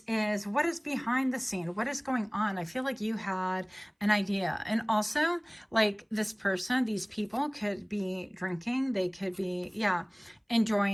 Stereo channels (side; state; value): both; identical; correlation 1.00